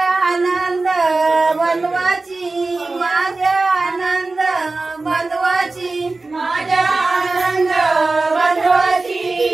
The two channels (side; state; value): left; quieter; 3.4 dB